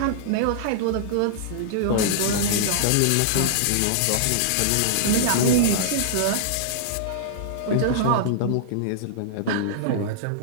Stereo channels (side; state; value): both; different; correlation -0.02